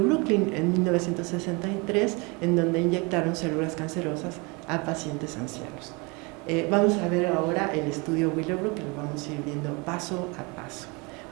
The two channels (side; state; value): left; quieter; 28.6 dB